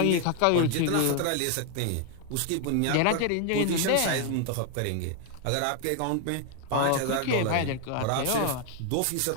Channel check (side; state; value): both; different; correlation 0.00